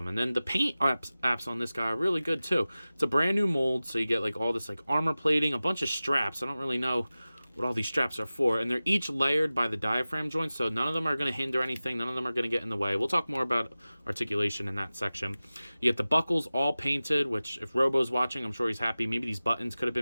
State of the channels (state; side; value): inverted; both; correlation -0.96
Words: And then the paint apps on this guy are really good too. It's a brand new mold, so you get like all this like armor plating, a bunch of straps. I don't really know what all these straps are for, and they're each layered by the diaphragm joints, so none of them are going to hinder anything, none of them are going to get in the way. We'll talk more about articulation in that section. You get the buckles all painted, which if Robo's watching, I'm sure he's happy. Maybe these buttons could have